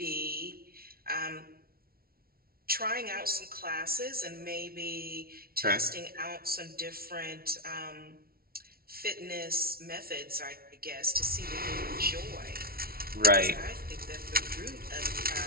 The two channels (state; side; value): late; left; 0.44 ms